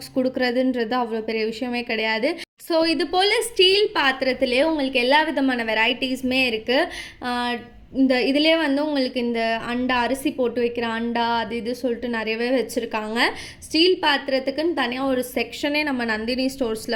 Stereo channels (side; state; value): both; identical; correlation 1.00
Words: கொடுக்குறதுன்றது அவ்வளோ பெரிய விஷயமே கிடையாது. ஸோ இது போல் ஸ்டீல் பாத்திரத்திலே உங்களுக்கு எல்லா விதமான வெரைட்டிஸுமே இருக்குது. இந்த இதிலே வந்து உங்களுக்கு இந்த அண்டா, அரிசி போட்டு வைக்கிற அண்டா, அது இது சொல்லிட்டு நிறையவே வச்சுருக்காங்க. ஸ்டீல் பாத்திரத்துக்குன்னு தனியாக ஒரு செக்ஷனே நம்ம நந்தினி ஸ்டோர்ஸில்